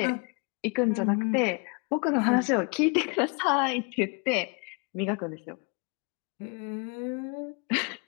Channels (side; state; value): right; quieter; 34.1 dB